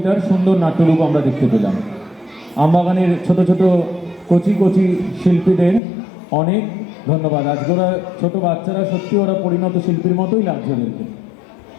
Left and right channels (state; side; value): drops out; right; at 5.8 s